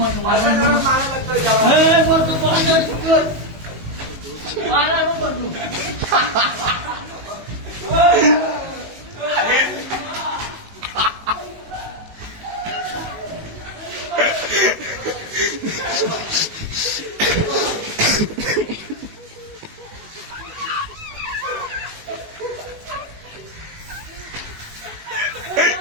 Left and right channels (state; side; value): late; left; 19 ms